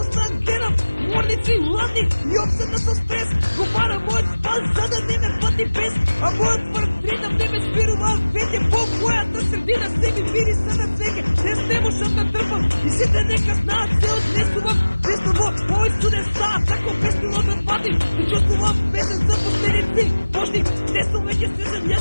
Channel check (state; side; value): inverted; both; correlation -1.00